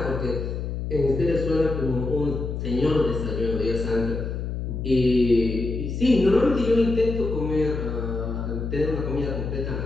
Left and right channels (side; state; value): left; noise; hum, 4 dB below the sound